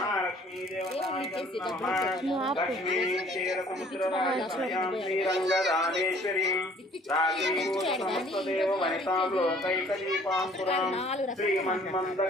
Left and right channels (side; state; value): both; normal; correlation 0.56